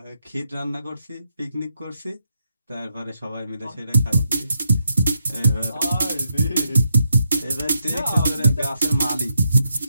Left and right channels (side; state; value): both; inverted; correlation -0.82